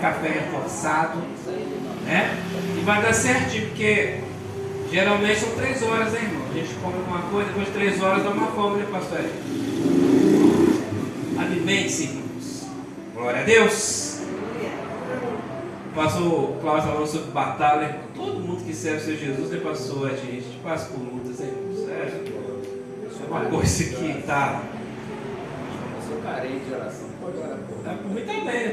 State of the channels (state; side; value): identical; both; correlation 1.00